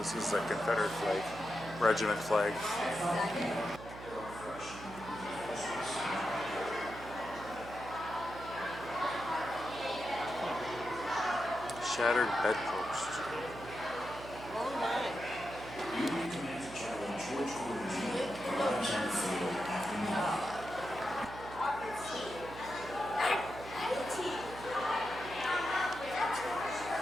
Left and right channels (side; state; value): right; noise; hum, 13 dB below the sound